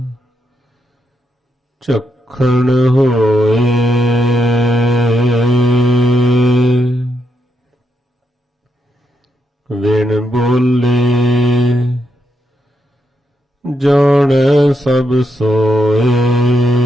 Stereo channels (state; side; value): normal; both; correlation 0.82